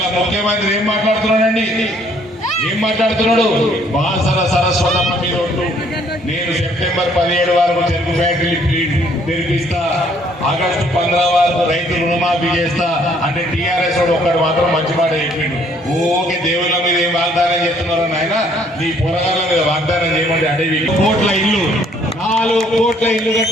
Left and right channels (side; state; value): both; normal; correlation 0.63